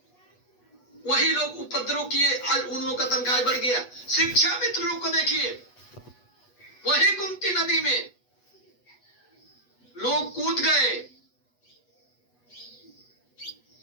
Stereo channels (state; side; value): late; right; 8.2 ms